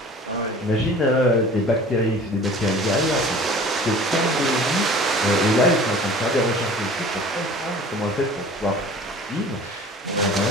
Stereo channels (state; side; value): normal; both; correlation 0.45